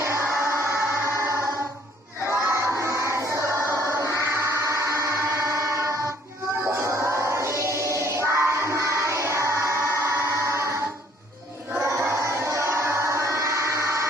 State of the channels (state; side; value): normal; both; correlation 0.61